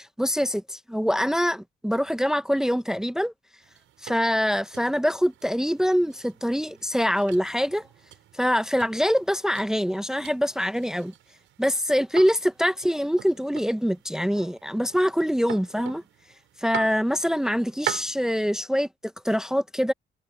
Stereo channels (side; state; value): both; normal; correlation 0.95